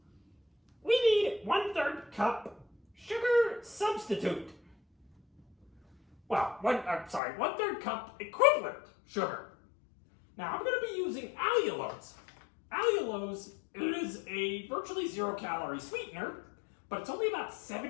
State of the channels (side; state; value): right; drops out; at 7.2 s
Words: We need 1/3 cup sugar substitute. Well, 1/3 cup equivalent sugar. Now, I'm going to be using allulose. Allulose is a virtually 0-calorie sweetener, but it's only about